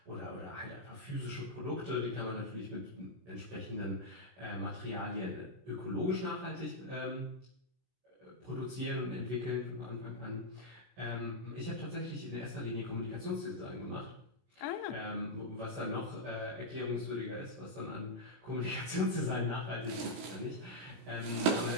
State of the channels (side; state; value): left; late; 17 ms